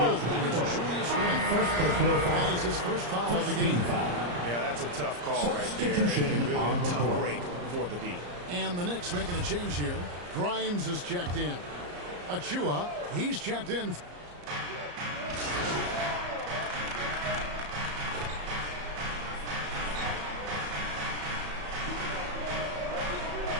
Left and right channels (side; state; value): left; late; 34 ms